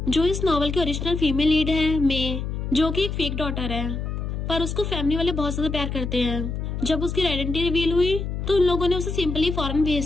जो इस नॉवल की ओरिजिनल फीमेल लीड है मे, जो कि एक फेक डॉटर है, पर उसको फैमिली वाले बहुत ज्यादा प्यार करते हैं। जब उसकी आइडेंटिटी रिवील हुई तो उन लोगों ने उसे सिंपली फॉरेन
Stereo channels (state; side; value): noise; left; hum, 4 dB below the sound